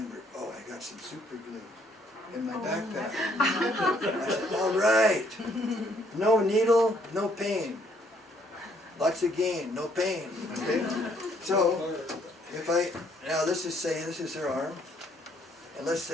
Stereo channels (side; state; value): both; normal; correlation 0.66